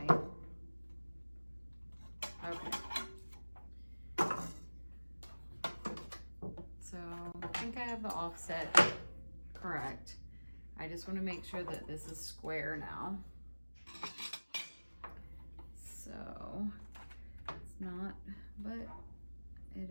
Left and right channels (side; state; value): both; inverted; correlation -1.00